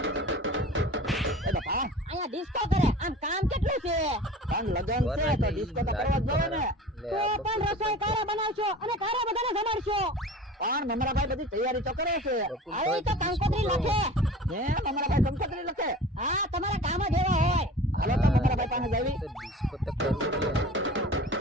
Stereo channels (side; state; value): both; normal; correlation 0.39